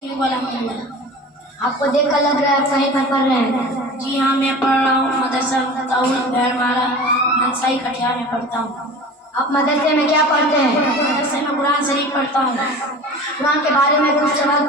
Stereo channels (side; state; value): both; normal; correlation 0.37